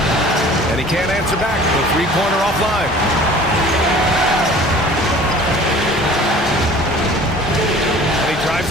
And he can't answer back. The three-pointer offline. And he drives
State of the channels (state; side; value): normal; both; correlation 0.47